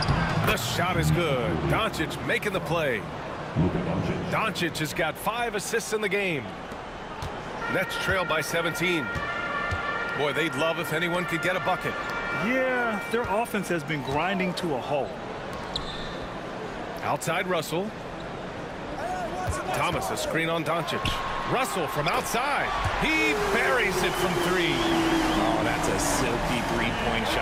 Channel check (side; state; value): both; identical; correlation 1.00